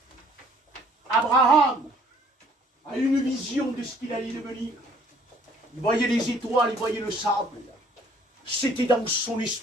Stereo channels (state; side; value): normal; both; correlation 0.58